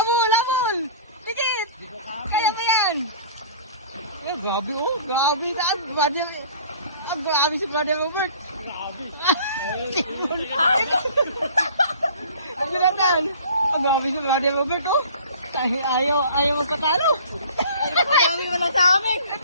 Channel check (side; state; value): both; inverted; correlation -0.47